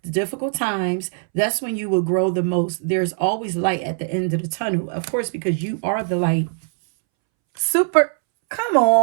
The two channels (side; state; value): left; silent; 65 dB below the other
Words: the difficult times. That's when you will grow the most. There's always light at the end of the tunnel. Of course, because you are the light. Super. Come